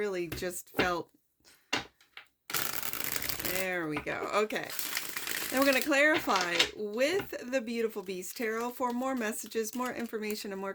just felt... There we go. Okay. Now we're going to clarify with the Beautiful Beast Tarot for more messages, more information, and more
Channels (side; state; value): both; identical; correlation 1.00